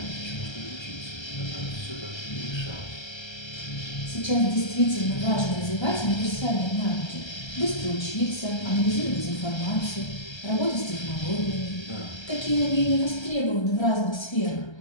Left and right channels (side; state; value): right; late; 1.3 ms